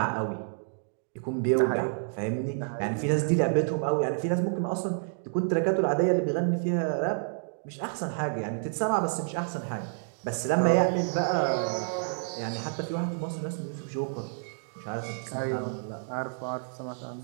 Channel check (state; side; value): silent; left; digital silence